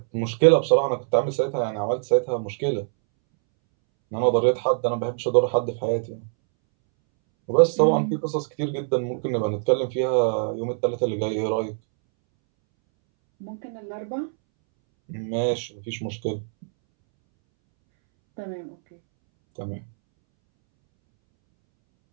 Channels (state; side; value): silent; left; 63 dB below the other